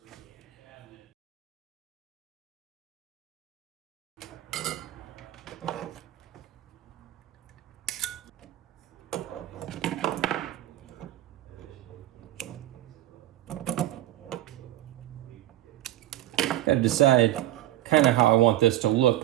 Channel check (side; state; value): left; quieter; 14.5 dB